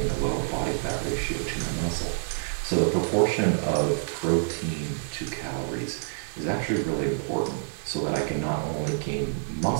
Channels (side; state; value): left; silent; digital silence